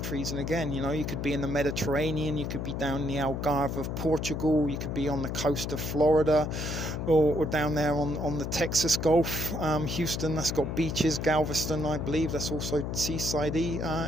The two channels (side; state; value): left; noise; hum, 3 dB below the sound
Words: and again, you know, you could be in the Mediterranean, you could be down in the Algarve of Portugal, you could be on the coast of Florida, or down there on the Texas Gulf. Houston, that's got beaches. Galveston, I believe, that's also seaside-y,